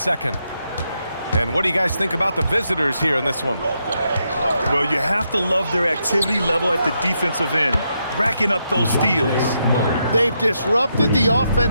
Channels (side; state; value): both; inverted; correlation -0.81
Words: And what do you guys think about the visitors here in this one? Well, you have to love their activity level at the defensive end, racking up those steals. They've disrupted the